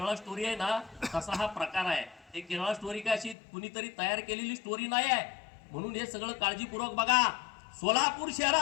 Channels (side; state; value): right; drops out; at 3.4 s